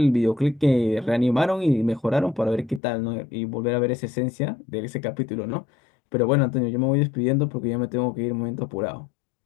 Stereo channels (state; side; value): drops out; right; at 2.8 s